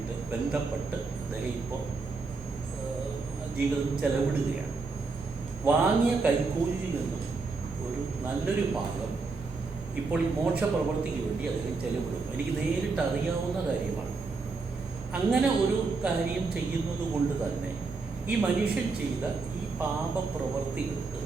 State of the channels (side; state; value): left; quieter; 4.2 dB